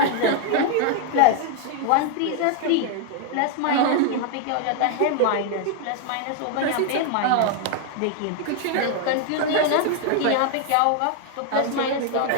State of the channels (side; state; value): both; different; correlation 0.00